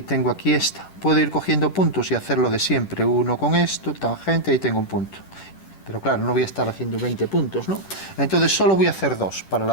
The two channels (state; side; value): late; right; 10 ms